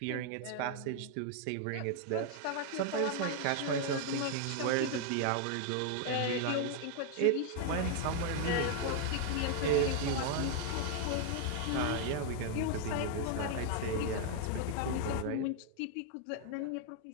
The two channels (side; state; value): both; different; correlation 0.00